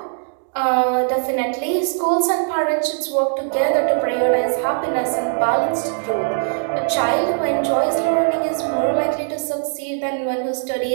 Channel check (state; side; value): silent; left; 66 dB below the other